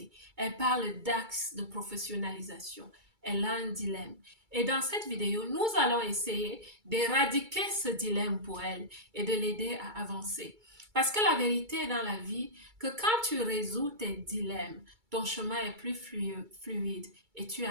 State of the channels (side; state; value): left; late; 2.3 ms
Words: elle parle d'axe de professionnalisation. Elle a un dilemme. Et dans cette vidéo, nous allons essayer d'éradiquer ce dilemme pour elle et de l'aider à avancer. Parce que la vérité est dans la vie que quand tu résous tes dilemmes, ton chemin est plus fluide et tu